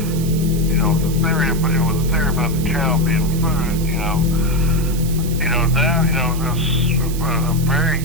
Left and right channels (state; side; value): noise; right; hiss, 12 dB below the sound